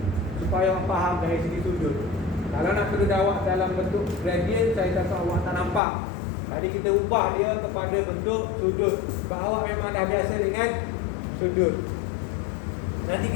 supaya awak faham dari segi sudut. Kalau nak perlu awak dalam bentuk gradient, saya takut awak tak nampak. Tadi kita ubah dia kepada bentuk sudut. Sebab awak memang dah biasa dengan sudut. Nanti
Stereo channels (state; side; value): drops out; right; at 5.8 s